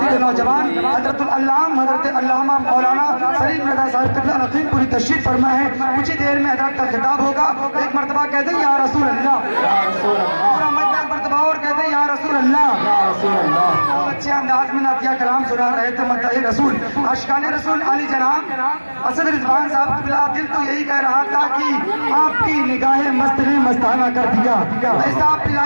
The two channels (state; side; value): inverted; both; correlation -1.00